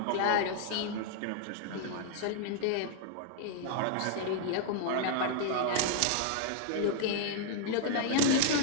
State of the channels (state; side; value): different; both; correlation -0.01